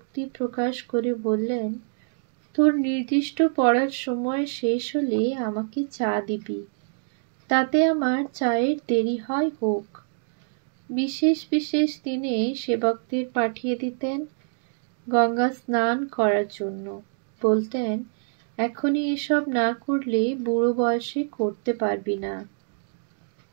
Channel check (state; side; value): silent; left; digital silence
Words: প্রকাশ করে বললেন, তোর নির্দিষ্ট পড়ার সময় শেষ হলে আমাকে চা দিবি, তাতে আমার চায়ের দেরি হয় হোক। বিশেষ বিশেষ দিনে সেবকদের পাঠিয়ে দিতেন গঙ্গা স্নান করার জন্য। বলতেন, এখনই এসব না করলে বুড়ো বয়সে করতে পারবি না।